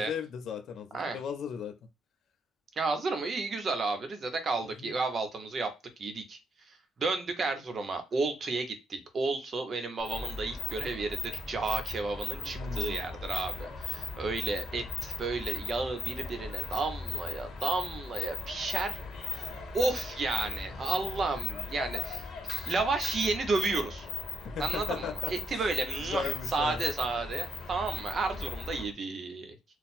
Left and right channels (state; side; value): normal; both; correlation 0.76